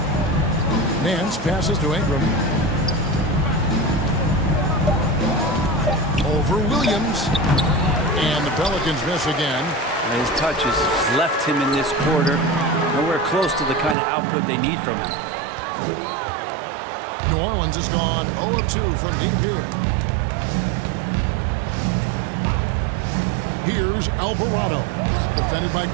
Nance passes to Ingram. Over Williams. And the Pelicans miss again. And his touch has left him in this quarter. Nowhere close to the kind of output they need from him. New Orleans has gone 0 of 2 from deep here. Here's Alvarado, defended by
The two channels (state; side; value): drops out; left; at 14.0 s